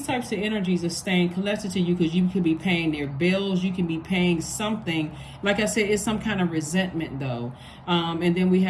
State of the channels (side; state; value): both; identical; correlation 1.00